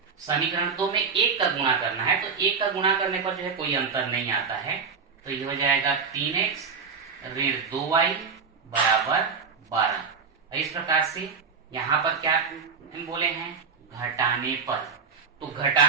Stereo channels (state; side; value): quieter; left; 5.6 dB